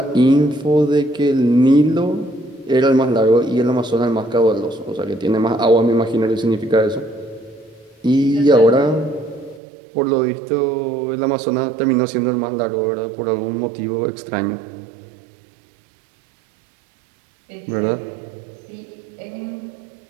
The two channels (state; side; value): drops out; left; at 9.6 s